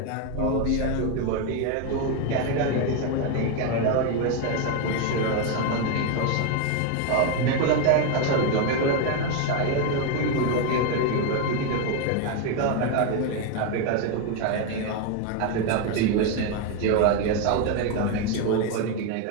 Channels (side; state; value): both; different; correlation 0.01